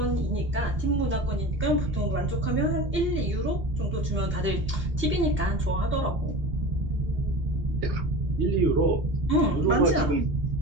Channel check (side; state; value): both; normal; correlation 0.32